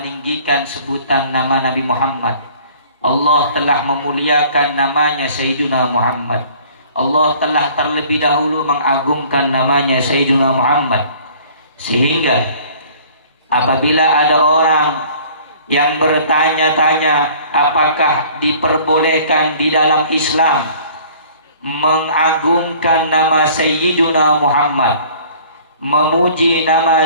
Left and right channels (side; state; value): both; inverted; correlation -0.51